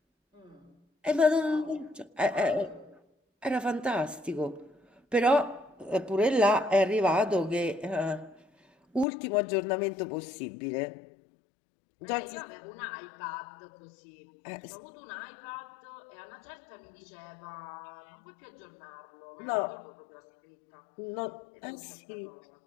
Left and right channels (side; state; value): right; drops out; at 9.1 s